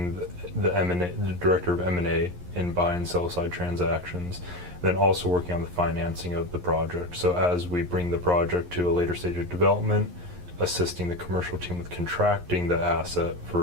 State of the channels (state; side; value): late; left; 11 ms